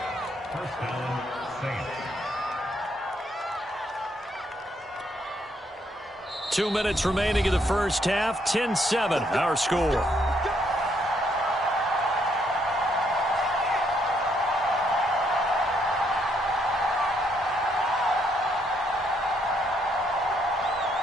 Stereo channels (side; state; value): both; normal; correlation 0.73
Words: 2 minutes remaining in the first half. 10-7, our score.